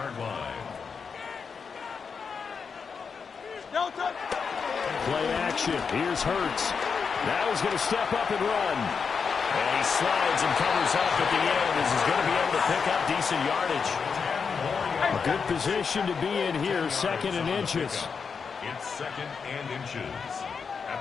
line. Play action. Here's Hurts. Now he's going to step up and run. And he slides and covers up at the end as he's going to be able to pick up decent yardage. A good position to be in here, 2nd and inches. It's 2nd and inches at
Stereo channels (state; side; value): quieter; right; 5.8 dB